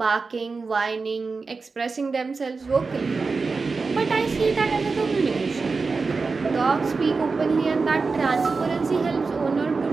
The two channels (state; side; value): quieter; left; 4.4 dB